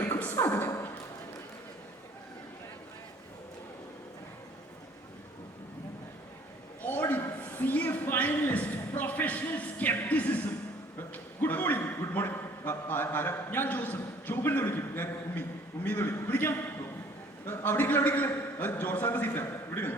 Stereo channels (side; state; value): both; normal; correlation 0.55